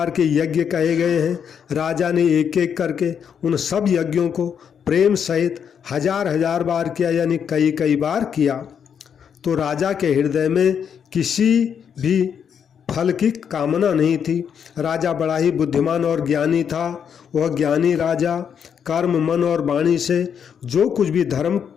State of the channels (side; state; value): right; quieter; 7.7 dB